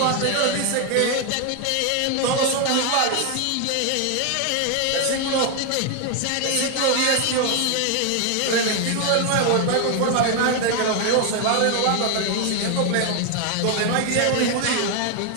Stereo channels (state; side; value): different; both; correlation 0.01